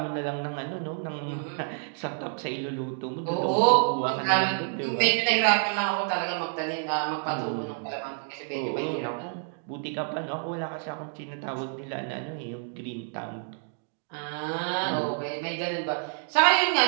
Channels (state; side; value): silent; left; 59 dB below the other